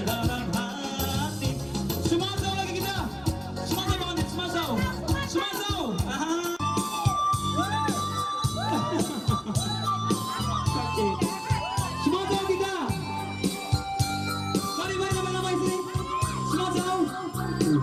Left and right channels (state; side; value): identical; both; correlation 1.00